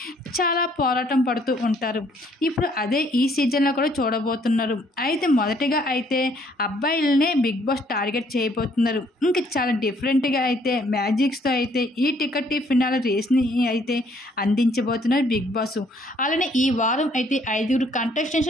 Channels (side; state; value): both; normal; correlation 0.65